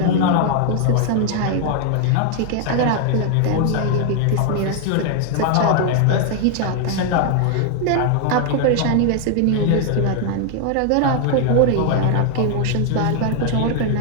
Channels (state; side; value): different; both; correlation 0.00